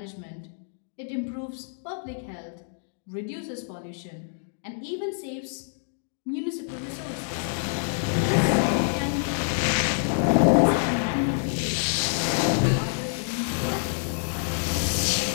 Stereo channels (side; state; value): right; silent; digital silence